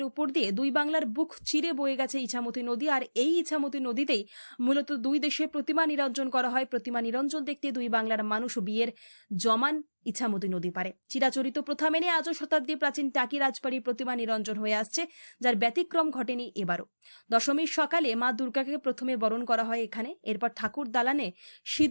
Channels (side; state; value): both; inverted; correlation -1.00